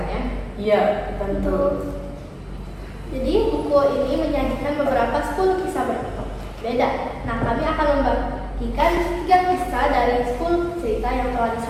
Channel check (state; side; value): identical; both; correlation 1.00